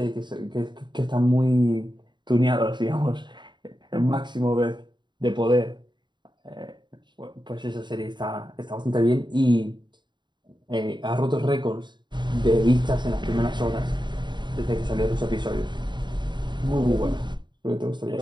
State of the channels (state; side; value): late; left; 0.22 ms